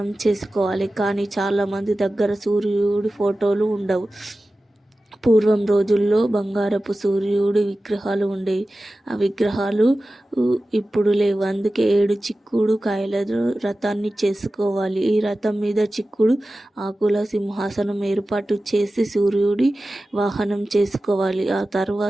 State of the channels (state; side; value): normal; both; correlation 0.95